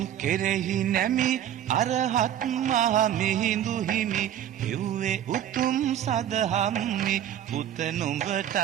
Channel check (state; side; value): quieter; left; 10.8 dB